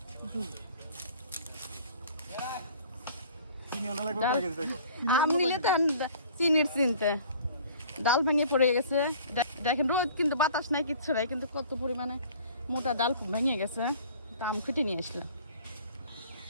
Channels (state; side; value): inverted; both; correlation -0.50